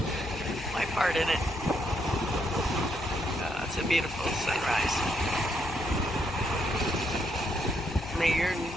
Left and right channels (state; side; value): normal; both; correlation 0.76